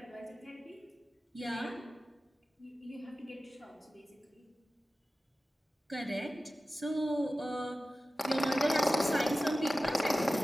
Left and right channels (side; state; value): both; normal; correlation 0.95